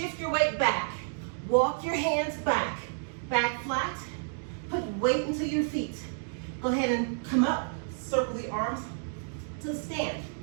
your weight back, walk your hands back. Back flat. Put weight into your feet. Go ahead and come up. Circle the arms to stand.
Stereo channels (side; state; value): left; silent; digital silence